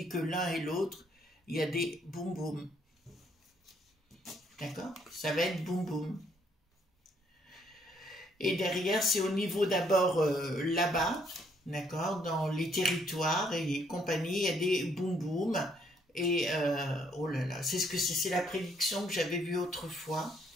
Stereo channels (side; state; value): both; normal; correlation 0.68